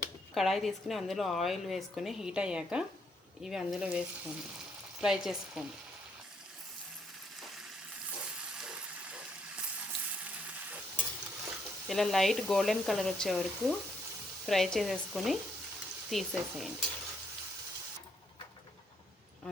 కడాయి తీసుకుని అందులో ఆయిల్ వేసుకొని హీట్ అయ్యాక ఇవి అందులో వేసుకోండి, ఫ్రై చేసుకోండి. ఇలా లైట్ గోల్డెన్ కలర్ వచ్చే వరకు ఫ్రై చేసేసుకొని తీసేసేయండి.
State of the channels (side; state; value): both; normal; correlation 0.72